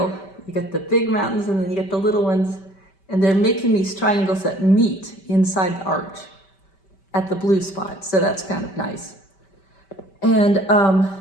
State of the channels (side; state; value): right; late; 5.2 ms